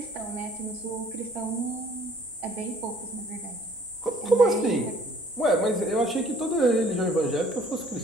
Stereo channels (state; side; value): normal; both; correlation 0.57